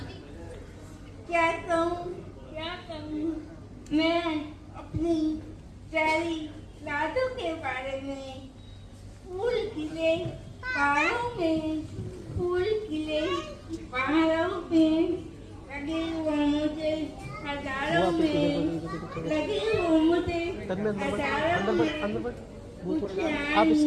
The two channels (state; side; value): identical; both; correlation 1.00